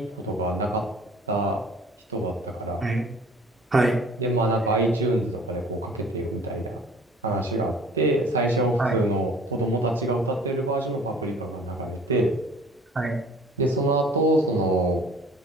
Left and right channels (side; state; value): both; normal; correlation 0.49